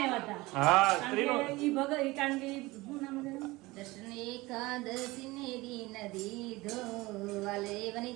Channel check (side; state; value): left; quieter; 21.2 dB